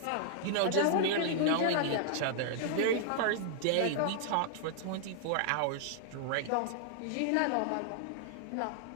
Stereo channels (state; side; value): different; both; correlation -0.01